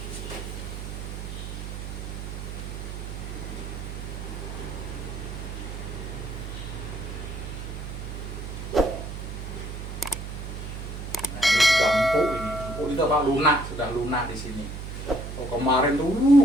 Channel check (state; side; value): noise; right; hum, 7 dB below the sound